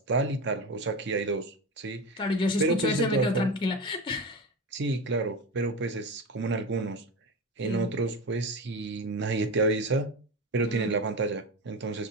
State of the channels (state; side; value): normal; both; correlation 0.23